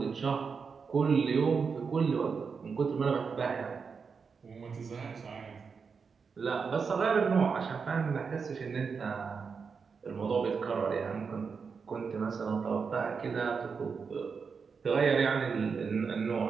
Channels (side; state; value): left; quieter; 5.5 dB